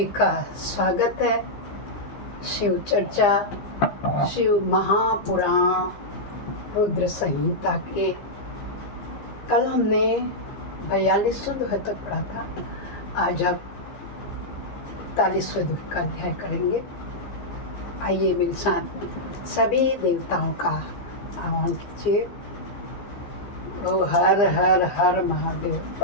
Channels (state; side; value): late; right; 15 ms